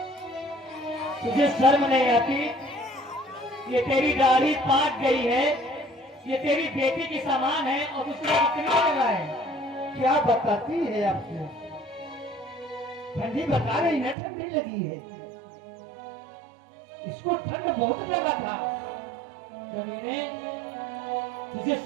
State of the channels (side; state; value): left; drops out; at 14.2 s